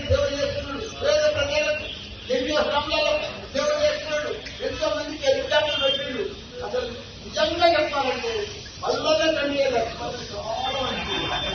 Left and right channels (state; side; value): identical; both; correlation 1.00